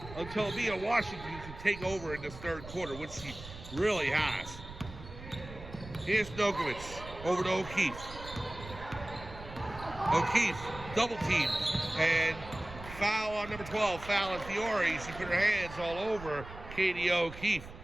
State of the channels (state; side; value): noise; right; rumble, 14 dB below the sound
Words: until Mia Washington can take over in this third quarter, which she really has. Here's Nokovic over to O'Keefe. O'Keefe, double team. And foul on number 12, foul on Fiore. She put her hands all over Katie O'Keefe.